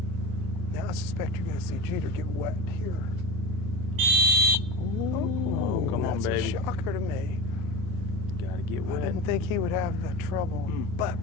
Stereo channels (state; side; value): normal; both; correlation 0.28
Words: Now I suspect you're going to see Jeter get wet here. Oh, come on, baby. That's a shocker to me. Gotta get wet. I didn't think he would have the trouble, but